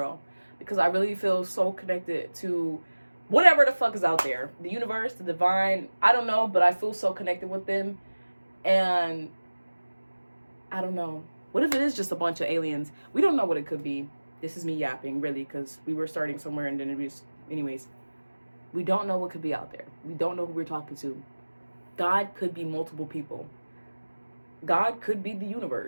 because I really feel so connected to whatever the fuck is out there. The universe, the divine, I don't know, but I feel so connected with them. And I don't know. What if it is just a bunch of aliens? We don't know what it could be. This is me yapping, really, because we were starting somewhere in the interviews. Anyways, we don't know what could be out there. We don't know who we're talking to. God could be multiple people. God could be the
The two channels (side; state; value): both; inverted; correlation -1.00